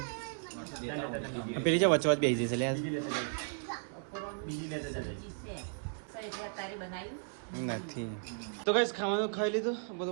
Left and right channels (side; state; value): left; silent; digital silence